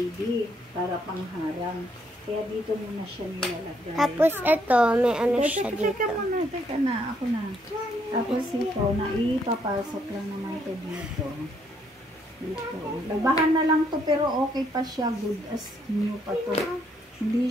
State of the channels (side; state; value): both; normal; correlation 0.71